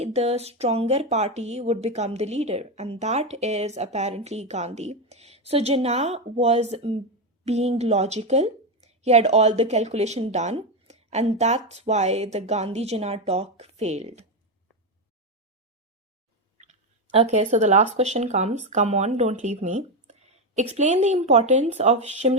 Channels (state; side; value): normal; both; correlation 0.09